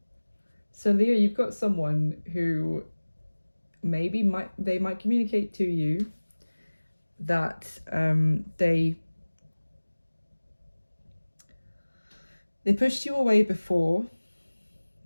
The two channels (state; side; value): inverted; both; correlation -1.00